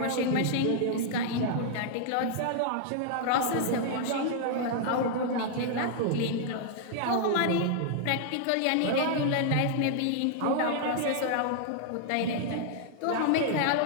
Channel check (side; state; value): both; different; correlation -0.01